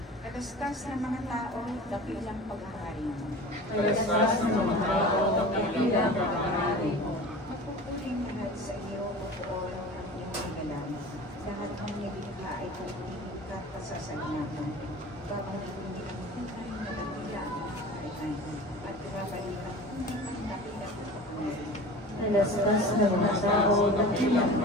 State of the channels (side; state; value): both; normal; correlation 0.38